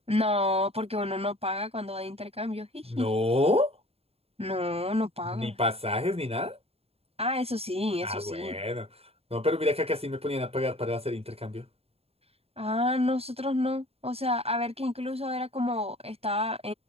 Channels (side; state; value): left; late; 0.29 ms